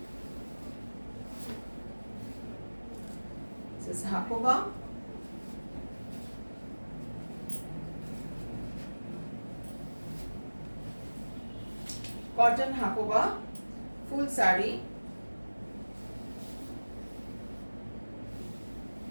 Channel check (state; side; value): inverted; both; correlation -1.00